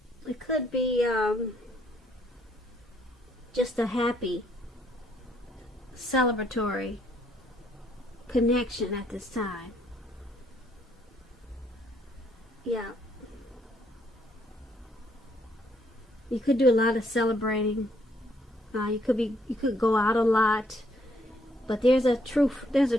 it could be just a happy, celebratory connection at this time. Yeah. You could do a lot of celebrating. You could go out a lot. But there's a true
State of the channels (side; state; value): both; normal; correlation 0.69